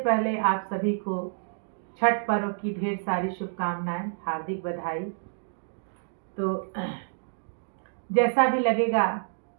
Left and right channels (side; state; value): left; silent; digital silence